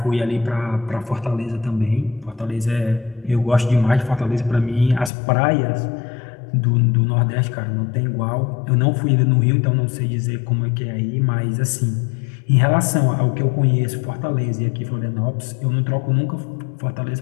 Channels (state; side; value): drops out; right; at 5.1 s